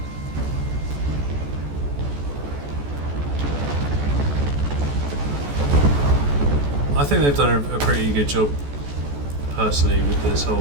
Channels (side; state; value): left; late; 14 ms